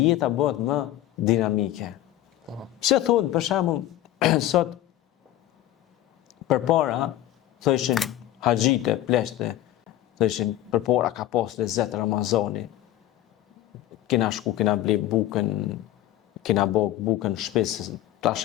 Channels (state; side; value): quieter; right; 13.8 dB